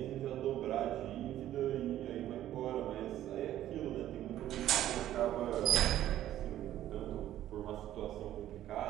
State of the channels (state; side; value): quieter; left; 12.6 dB